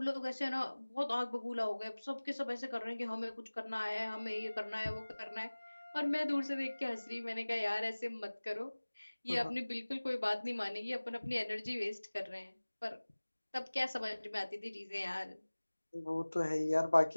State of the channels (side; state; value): both; inverted; correlation -1.00